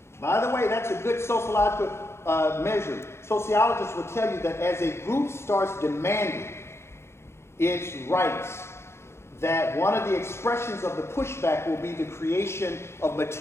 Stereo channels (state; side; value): late; right; 0.13 ms